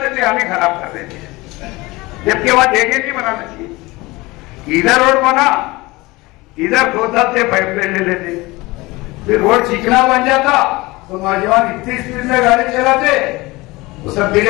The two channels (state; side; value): quieter; right; 21.8 dB